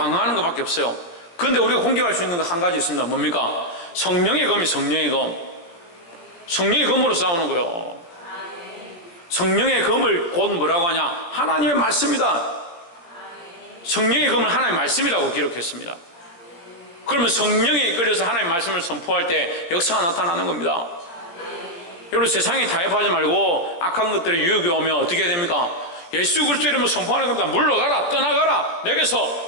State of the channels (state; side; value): late; right; 17 ms